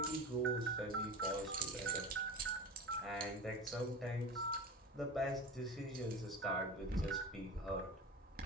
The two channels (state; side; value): normal; both; correlation 0.31